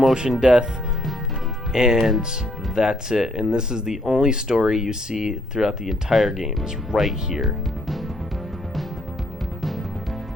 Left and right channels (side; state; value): both; normal; correlation 0.69